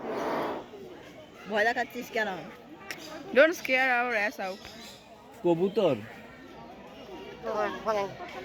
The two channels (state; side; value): identical; both; correlation 1.00